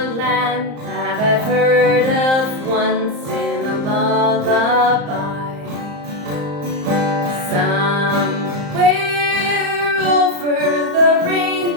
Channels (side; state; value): left; late; 34 ms